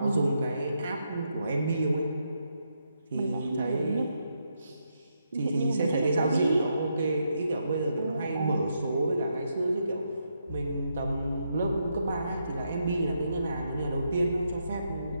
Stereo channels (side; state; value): both; inverted; correlation -0.80